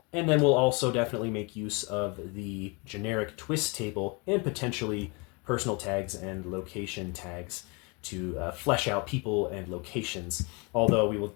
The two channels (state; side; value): quieter; right; 30.2 dB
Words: And then we'll also definitely make use of the generic twist table and potentially personal tags and location tags to flesh out people and locations. Although we will